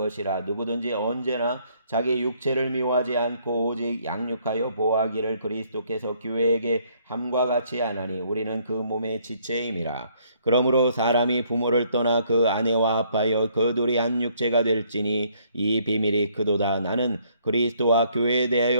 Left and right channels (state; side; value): inverted; both; correlation -0.66